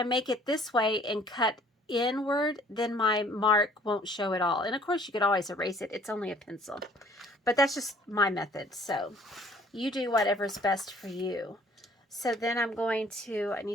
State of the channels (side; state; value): both; normal; correlation 0.56